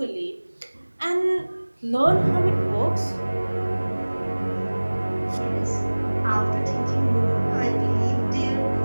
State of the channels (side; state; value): both; inverted; correlation -1.00